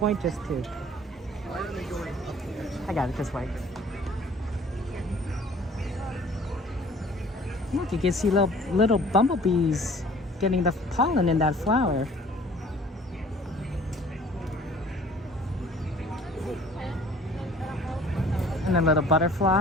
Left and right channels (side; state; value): both; normal; correlation 0.52